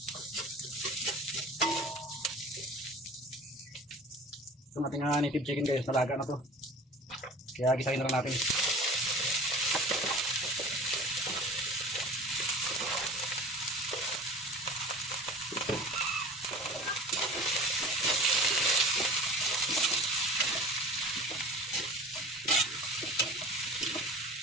Itong ating native chicken guys, nalaga na to. Kaya gisahin na lang natin.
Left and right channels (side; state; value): both; normal; correlation 0.40